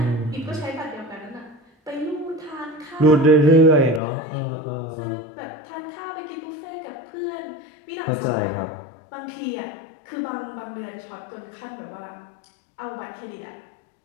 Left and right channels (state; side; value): drops out; right; at 4.0 s